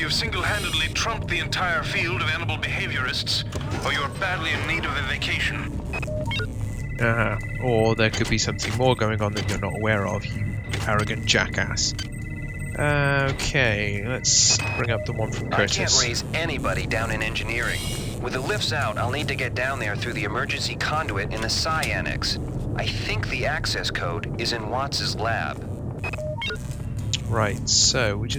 single-handedly trumped the entire field of animal behaviorists, or you're badly in need of a vacation. Or there could be something more going on that you're not aware of, you arrogant jackass. Okay, let's bring up the one from Curtis. I can't raise anybody down in engineering. With the lifts out, I'll need to get down there through the emergency conduit in the Psi Annex. I think the access code is in Watts' lab. Right, so we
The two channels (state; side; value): identical; both; correlation 1.00